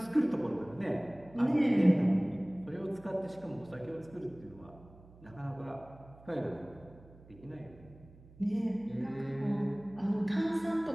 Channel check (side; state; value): right; noise; hum, 22 dB below the sound